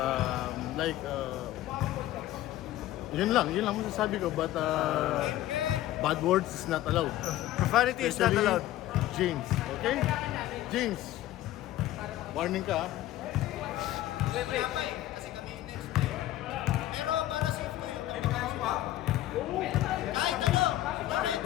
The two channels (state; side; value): quieter; right; 14.4 dB